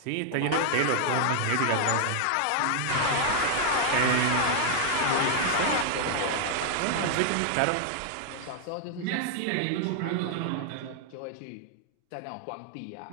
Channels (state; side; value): different; both; correlation 0.00